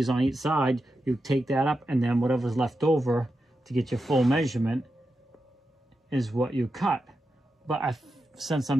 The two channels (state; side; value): normal; both; correlation 0.89